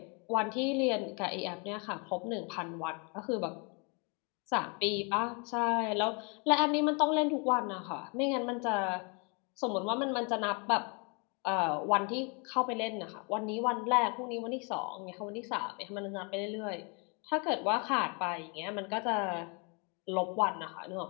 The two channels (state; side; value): quieter; right; 33.8 dB